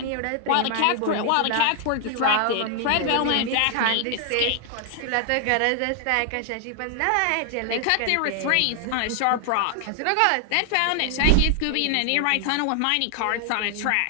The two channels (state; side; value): different; both; correlation 0.00